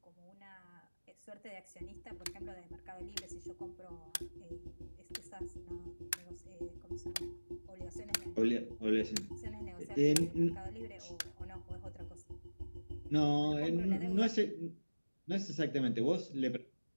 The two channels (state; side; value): inverted; both; correlation -1.00